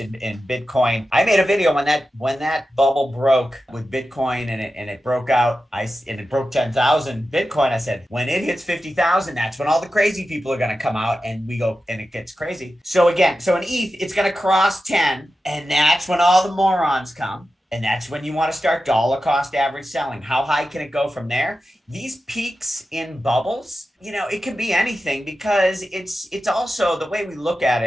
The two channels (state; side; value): normal; both; correlation 0.92